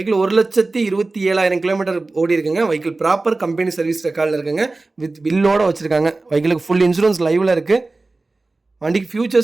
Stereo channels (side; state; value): left; quieter; 3.3 dB